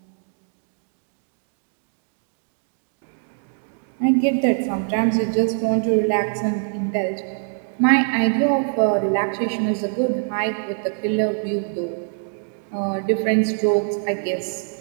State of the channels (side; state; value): left; silent; 58 dB below the other